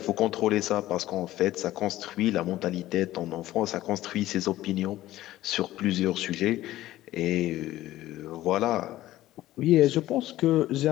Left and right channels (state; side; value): quieter; right; 15.2 dB